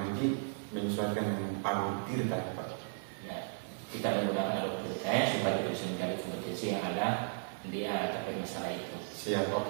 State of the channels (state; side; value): silent; left; digital silence